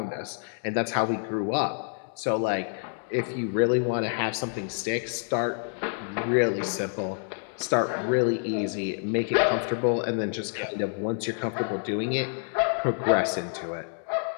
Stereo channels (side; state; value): right; silent; 60 dB below the other